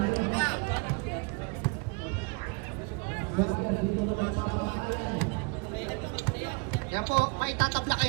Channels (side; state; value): left; quieter; 30.7 dB